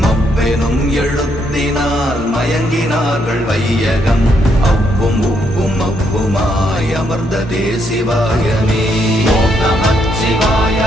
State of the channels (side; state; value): both; normal; correlation 0.75